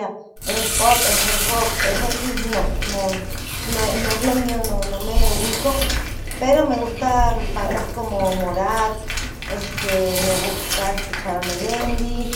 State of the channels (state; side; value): identical; both; correlation 1.00